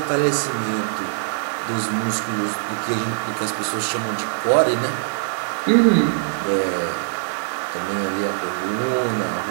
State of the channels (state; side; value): silent; left; digital silence